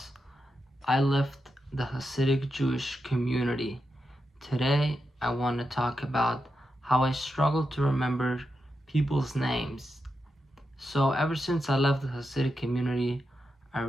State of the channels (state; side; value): normal; both; correlation 0.87